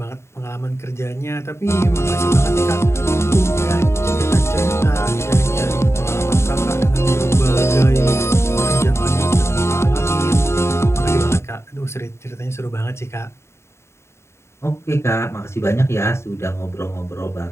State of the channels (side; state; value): right; late; 0.13 ms